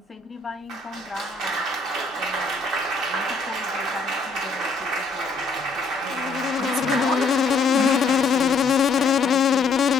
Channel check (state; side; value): quieter; right; 4.0 dB